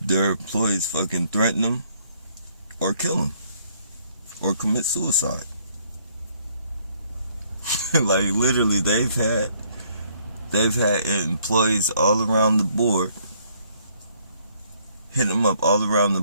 their employees fucking threaten them or kill them or commit suicide. Like, literally, they've had employees all around the board, hit them up all around the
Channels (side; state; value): both; inverted; correlation -0.66